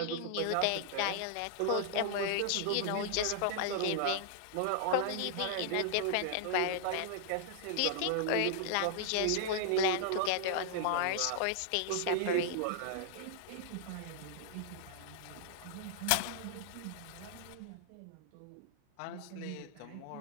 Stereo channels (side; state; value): both; different; correlation -0.01